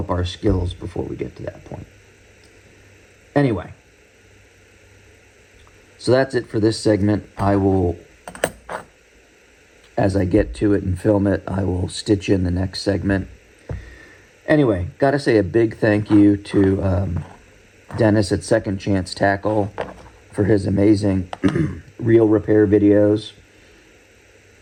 our skills before we get to that point. Anyway, so that's it for this segment. I will, as I get to it and film it, I will stitch in the next segment. Anyway, got to say a big thank you to Dennis at Second Chance Tackle for his amazing reel repair videos.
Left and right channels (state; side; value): identical; both; correlation 1.00